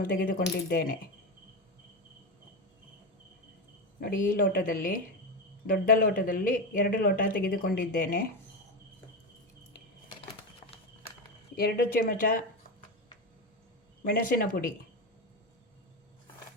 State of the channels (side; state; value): both; normal; correlation 0.15